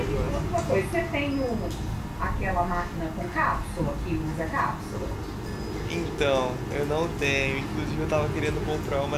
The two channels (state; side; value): identical; both; correlation 1.00